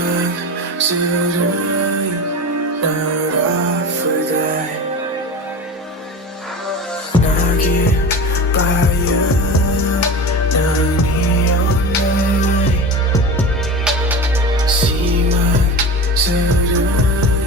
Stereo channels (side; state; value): both; normal; correlation 0.30